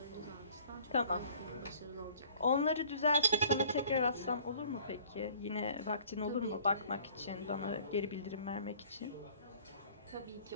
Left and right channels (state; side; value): inverted; both; correlation -0.53